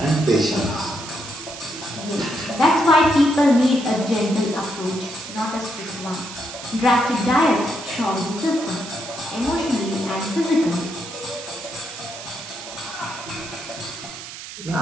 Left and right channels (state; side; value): noise; right; hiss, 12 dB below the sound